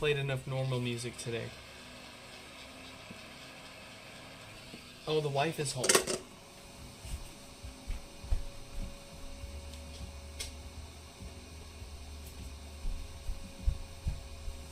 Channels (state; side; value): identical; both; correlation 1.00